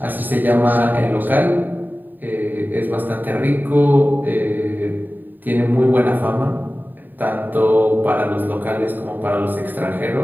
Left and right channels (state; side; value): late; left; 0.089 ms